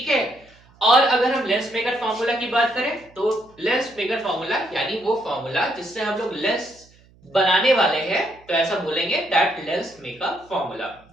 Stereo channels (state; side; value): noise; right; hum, 29 dB below the sound